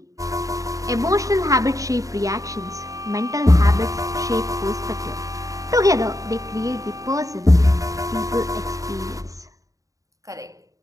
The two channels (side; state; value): left; late; 0.16 ms